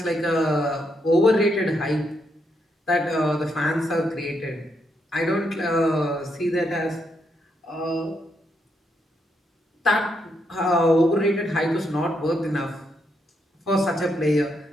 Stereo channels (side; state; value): both; normal; correlation 0.79